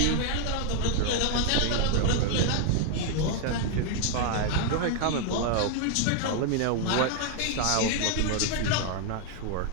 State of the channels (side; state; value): both; different; correlation 0.01